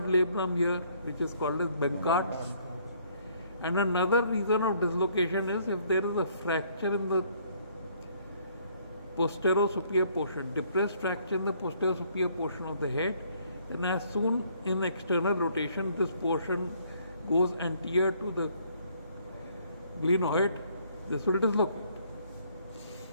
labrum here, which is called as Benkart's. And another reason of dislocation is if there is a fracture in the posterior superior portion, depressed fracture in the posterior superior portion of the head, and as soon in external rotation this portion goes anterior to the glenoid, this will dislocate.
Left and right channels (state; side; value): inverted; both; correlation -0.64